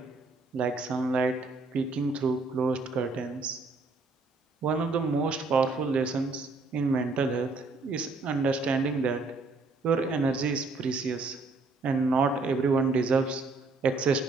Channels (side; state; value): left; quieter; 3.7 dB